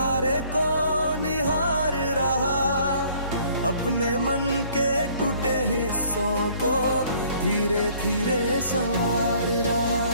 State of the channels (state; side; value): inverted; both; correlation -0.59